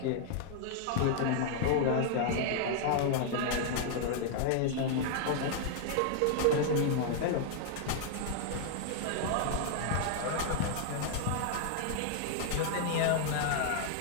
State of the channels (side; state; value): both; different; correlation 0.00